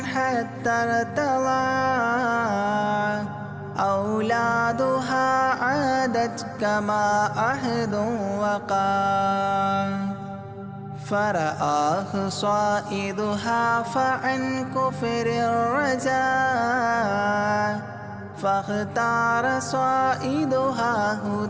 حتى ارتضى أولادها عادت كما عهد وقع فرآه صائدها فعن كفر الرجاء فاختار صائدها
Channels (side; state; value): both; identical; correlation 1.00